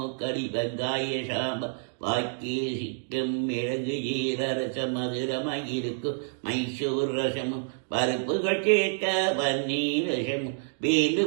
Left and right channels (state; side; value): silent; left; digital silence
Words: வெங்காய சாம்பார் வாக்கிய சிக்கும் மிளகு ஜீரரசம் மதுரமாயிருக்கும் மைசூர் ரசமும் பருப்புகள் சேர்த்த பன்னீர் ரசமும்